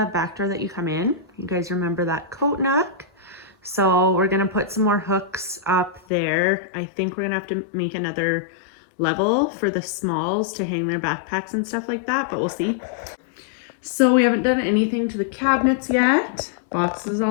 back door that you come in. You guys remember that coat nook? So we're gonna put some more hooks up there. I think we're gonna have to make another level for the smalls to hang their backpacks and stuff like that, but we'll see. So we haven't done anything to the cabinets yet. Boxes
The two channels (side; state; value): right; drops out; at 6.0 s